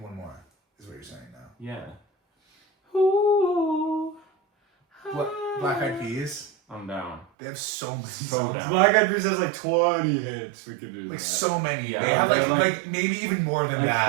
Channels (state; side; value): drops out; left; at 7.2 s